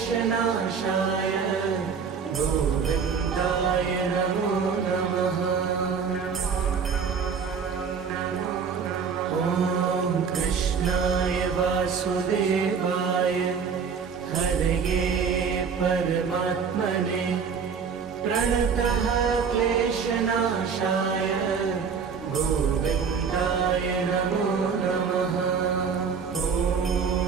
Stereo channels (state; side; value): quieter; left; 6.2 dB